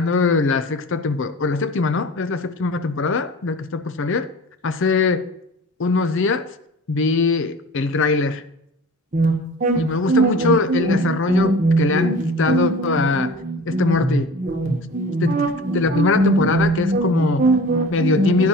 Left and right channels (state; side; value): normal; both; correlation 0.39